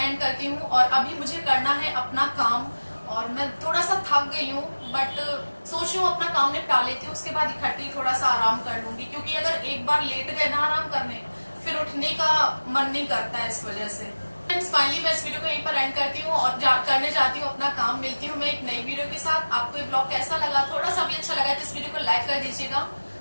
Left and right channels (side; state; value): both; inverted; correlation -1.00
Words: करती हूँ, और अभी मुझे करना है अपना काम, और मैं थोड़ा सा थक गई हूँ, बट सोच रही हूँ अपना काम निपटा लेती हूँ, उसके बाद इकट्ठी थोड़ा सा आराम कर लूंगी, क्योंकि अगर एक बार लेट गए ना आराम करने, फिर उठने का मन नहीं करता है इस वजह से। फाइनली मैं इस वीडियो को यहीं पर एंड करती हूँ और करने जाती हूँ अपना काम। मिलती हूँ मैं एक नई वीडियो के साथ। आपको ये ब्लॉग कैसा लगा, थोड़ा सा भी अच्छा लगा तो इस वीडियो को लाइक कर दीजिएगा।